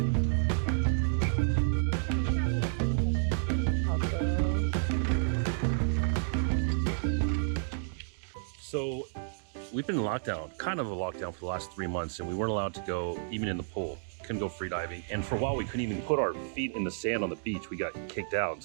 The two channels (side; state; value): left; silent; digital silence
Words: So we've been in lockdown, kind of a lockdown for the last 3 months, and we weren't allowed to go even in the pool. Couldn't go free diving. And for a while, we couldn't even put our feet in the sand on the beach. We got kicked out.